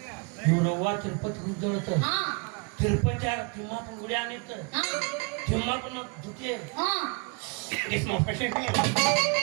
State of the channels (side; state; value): left; quieter; 33.0 dB